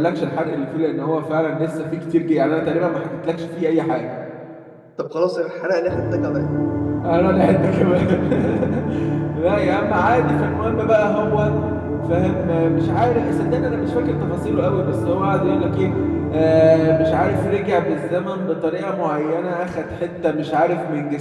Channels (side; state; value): both; identical; correlation 1.00